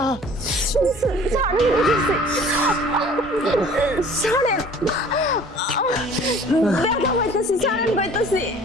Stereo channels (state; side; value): normal; both; correlation 0.49